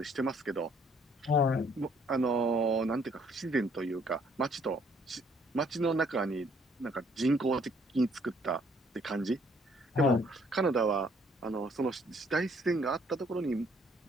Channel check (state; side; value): normal; both; correlation 0.64